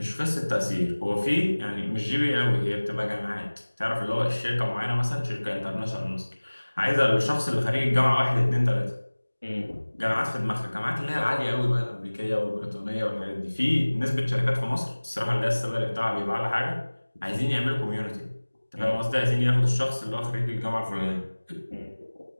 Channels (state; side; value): inverted; both; correlation -1.00